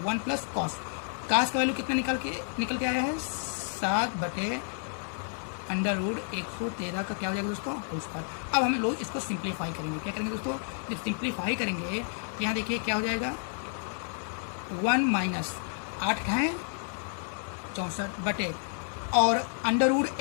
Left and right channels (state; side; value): silent; right; 58 dB below the other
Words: 1 प्लस कॉस का वैल्यू कितना निकल के आया है 7 बटे अंडर रूट 113 का क्या हो जाएगा दोस्तों, होल स्क्वायर। अब हम लोग इसको सिंप्लीफाई करेंगे, क्या करेंगे दोस्तों, जब सिंप्लीफाई करेंगे तो यहाँ देखिए क्या हो जाएगा 1 माइनस 8 है 64 बटे और अंडर रूट